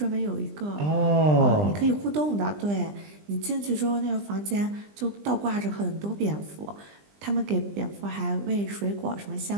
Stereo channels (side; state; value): left; late; 20 ms